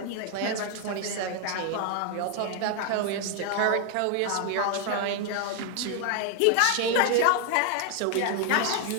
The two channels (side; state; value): both; different; correlation 0.00